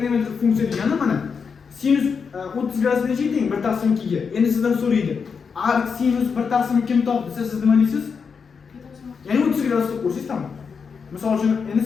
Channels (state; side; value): quieter; right; 5.9 dB